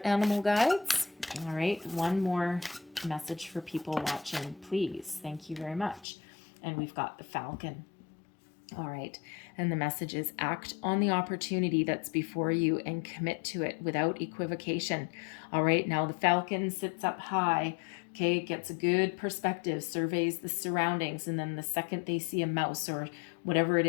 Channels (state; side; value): drops out; right; at 6.1 s